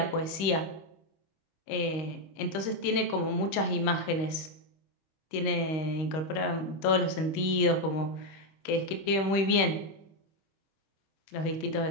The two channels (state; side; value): late; right; 25 ms